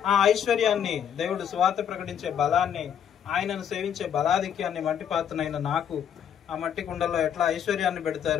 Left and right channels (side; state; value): right; quieter; 8.7 dB